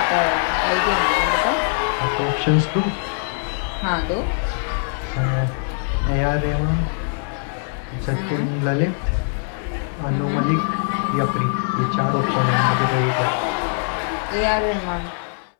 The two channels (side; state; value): right; silent; 64 dB below the other